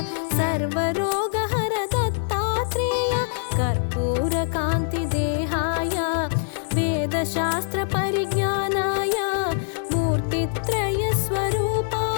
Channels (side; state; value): right; silent; 63 dB below the other